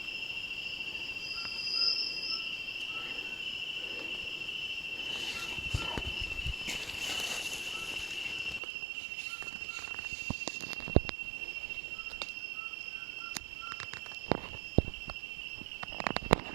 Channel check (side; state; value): left; drops out; at 8.6 s